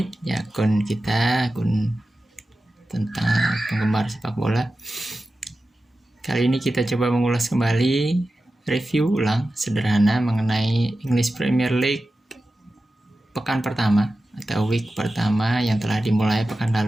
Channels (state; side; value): normal; both; correlation 0.93